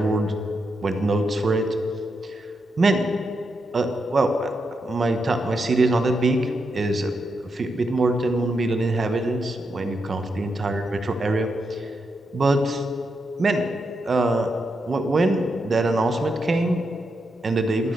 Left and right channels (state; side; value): normal; both; correlation 0.84